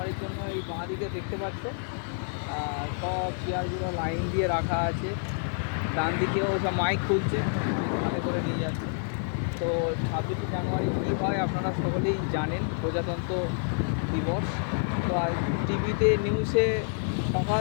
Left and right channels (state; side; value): silent; right; digital silence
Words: জন্য এই বাঁ দিকে দেখতে পাচ্ছ সব চেয়ারগুলো লাইন দিয়ে রাখা আছে। ডান দিকেও সব মাইক খুলছে, মাইক হাতে করে নিয়ে যাচ্ছে। তো 26শে জানুয়ারি কী হয় আপনারা সকলেই জানেন, প্রজাতন্ত্র দিবস। তো আর টিভিতে নিউজে সকাল